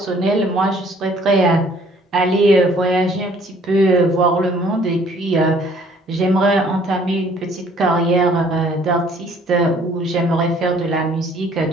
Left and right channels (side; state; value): both; normal; correlation 0.58